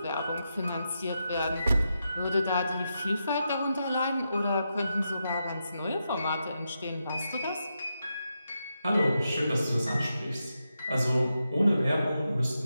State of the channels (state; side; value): inverted; both; correlation -0.86